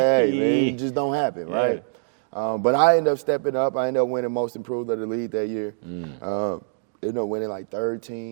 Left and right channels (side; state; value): left; silent; digital silence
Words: man. It just don't happen, right? But I ended up stepping up. I ended up winning Most Improved of the league that year. Ended up winning like third